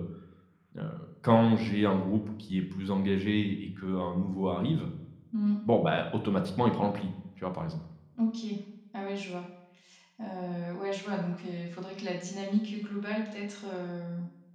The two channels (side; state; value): both; identical; correlation 1.00